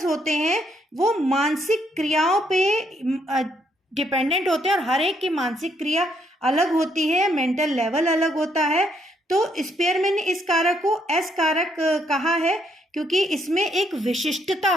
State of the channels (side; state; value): both; normal; correlation 0.73